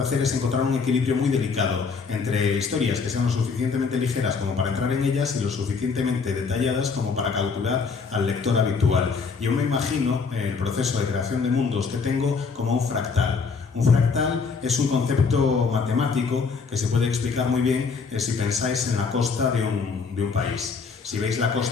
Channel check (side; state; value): right; quieter; 5.1 dB